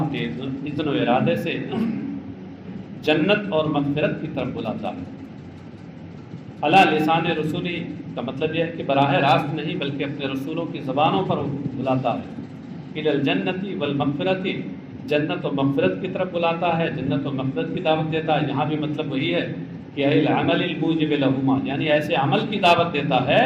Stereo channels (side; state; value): both; identical; correlation 1.00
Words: اذن و ارادے سے جنت اور مغفرت کی طرف بلاتا ہے۔ علی لسان رسولی کا مطلب یہ ہے کہ براہ راست نہیں بلکہ اپنے رسولوں کی زبانوں پر بلاتا ہے۔ الی الجنۃ والمغفرۃ، جنت و مغفرت کی طرف بلاتا ہے، جنت و مغفرت کی دعوت دیتا ہے۔ یہاں بھی مطلب وہی ہے کہ العمل الموجب لہما، یعنی ایسے عمل کی دعوت دیتا ہے